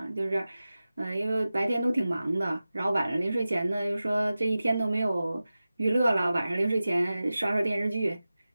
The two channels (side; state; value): both; inverted; correlation -0.95